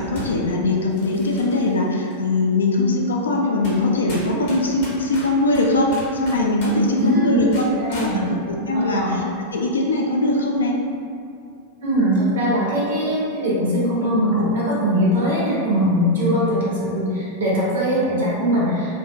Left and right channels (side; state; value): both; normal; correlation -0.17